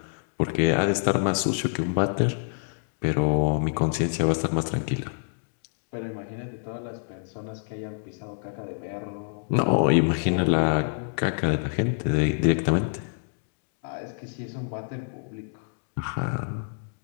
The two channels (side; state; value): right; silent; digital silence